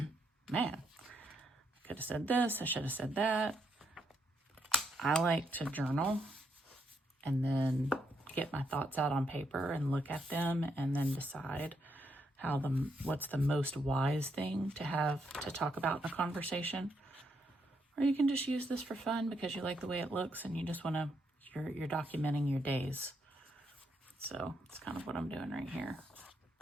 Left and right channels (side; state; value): both; normal; correlation 0.77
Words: man, I could have said this, I should have said that. I like to journal and then get my thoughts out on paper and look at them and then decide what's the most wise thing to have to talk about in a conversation. Or you can just use this for fun because you like the way it looks and you just want to, you're documenting your days. So it's kind of what I'm doing right here.